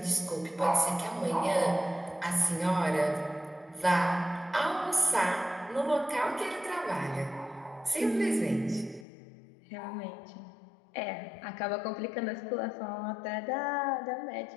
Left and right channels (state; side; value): drops out; right; at 9.1 s